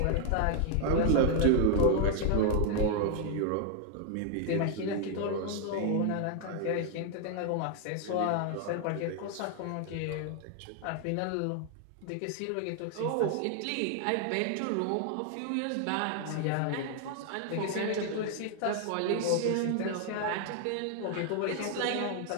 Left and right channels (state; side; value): different; both; correlation 0.00